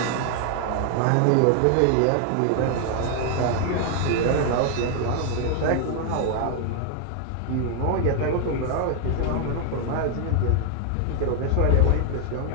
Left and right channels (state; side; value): different; both; correlation 0.00